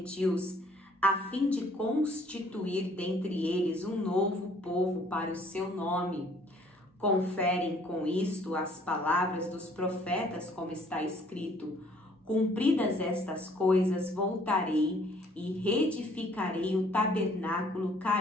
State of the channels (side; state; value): both; normal; correlation 0.60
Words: a fim de constituir dentre eles um novo povo para o seu nome. Conferem com isto as palavras dos profetas, como está escrito: cumpridas estas coisas, voltarei e reedificarei o tabernáculo